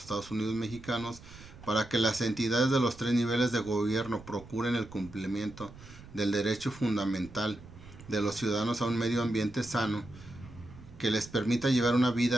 Estados Unidos Mexicanos, para que las entidades de los tres niveles de gobierno procuren el cumplimiento del derecho fundamental de los ciudadanos a un medio ambiente sano que les permita llevar una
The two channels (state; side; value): noise; right; rumble, 18 dB below the sound